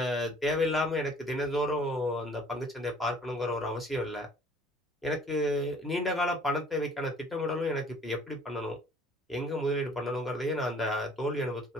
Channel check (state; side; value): normal; both; correlation 0.55